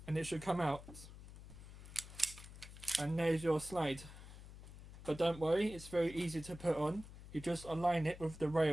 and it should come out, and there's your slide. But don't worry, it's very easy to put on. You just align it with the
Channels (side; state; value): left; noise; hum, 15 dB below the sound